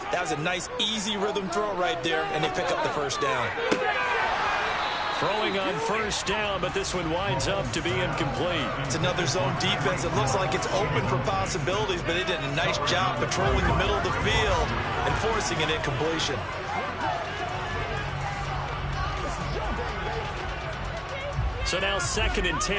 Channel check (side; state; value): both; identical; correlation 1.00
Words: That was a nice, easy rhythm throw right there, and they pick up the first down. Throwing on first down, but this one winds up to be incomplete. It's another zone defense. It looks like it's open for possibilities, but they did a nice job patrolling the middle of the field and forcing an incompletion. So now 2nd and